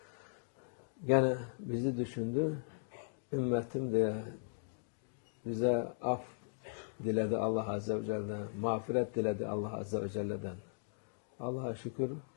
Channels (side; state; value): right; silent; digital silence